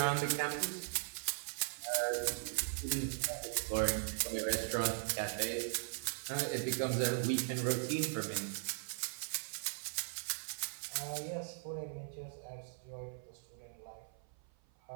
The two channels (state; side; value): silent; left; 52 dB below the other